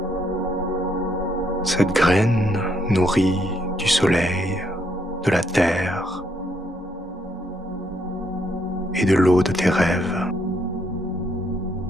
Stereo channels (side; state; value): both; normal; correlation 0.73